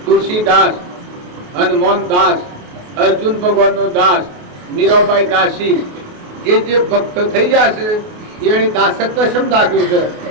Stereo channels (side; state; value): left; late; 28 ms